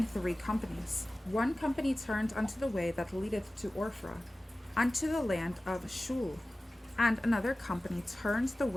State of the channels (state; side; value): normal; both; correlation 0.97